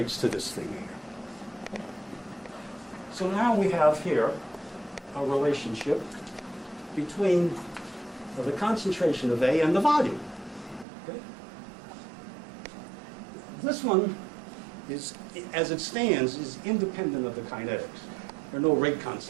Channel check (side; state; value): left; drops out; at 10.9 s